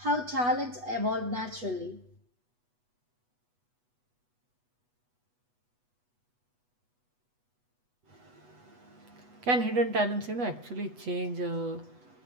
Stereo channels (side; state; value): left; late; 8.2 ms